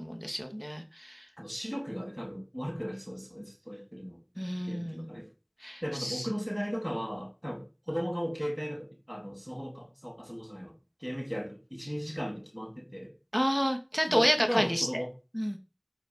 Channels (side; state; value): both; identical; correlation 1.00